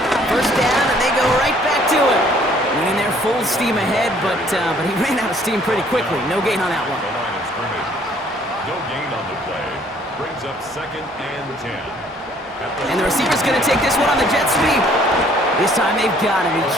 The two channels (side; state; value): both; normal; correlation 0.60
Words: 1st down, and they go right back to him. Winning their full steam ahead, but he ran out of steam pretty quickly. No gain on that one. The line of scrimmage. No gain on the play. Brings up 2nd and 10. And the receiver's going to take this one on the jet sweep. This time they've got him.